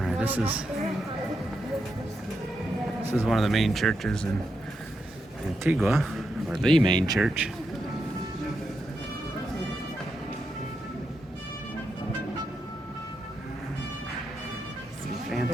this is one of the main churches in Antigua, or the main church.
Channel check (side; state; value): both; normal; correlation 0.84